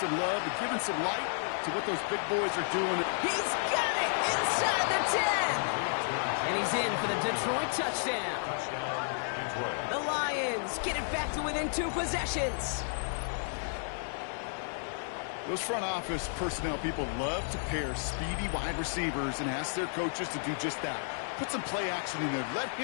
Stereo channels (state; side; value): silent; right; digital silence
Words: love and giving some light to what those big boys are doing. He's got it inside the 10. And he's in for the Detroit touchdown. The Lions get it back to within 2 possessions. Those front office personnel people love to pair speedy wide receivers and ask their coaches to do just that. Put some play action in there. Let